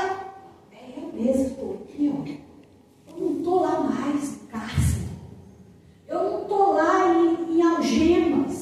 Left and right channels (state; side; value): identical; both; correlation 1.00